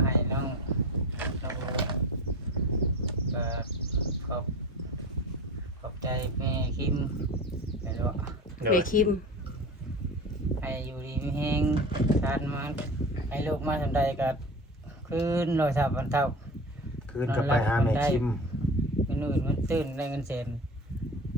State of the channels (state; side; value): normal; both; correlation 0.33